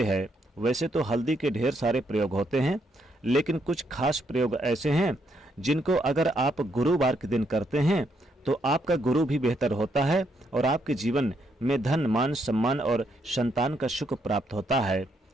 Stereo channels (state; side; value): normal; both; correlation 0.75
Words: है। वैसे तो हल्दी के ढेर सारे प्रयोग होते हैं, लेकिन कुछ खास प्रयोग ऐसे हैं जिनको अगर आप गुरुवार के दिन करते हैं तो आपका गुरु भी बेहतर होता है और आपके जीवन में धन, मान, सम्मान और संतान का सुख प्राप्त होता है।